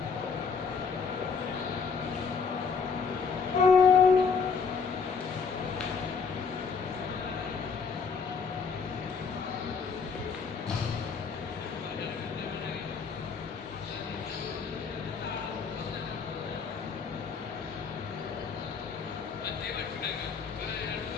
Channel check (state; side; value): quieter; right; 5.6 dB